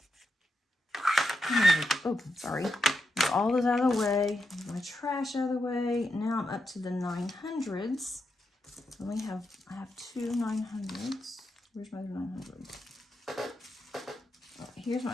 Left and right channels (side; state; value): both; normal; correlation 0.85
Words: Oh, sorry. All this out of the way, my trash out of the way. Now I'm up to the 900s. I have two 900s. Where's my other 900? Oh, here's